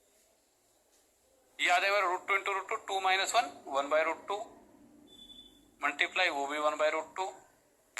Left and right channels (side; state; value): both; identical; correlation 1.00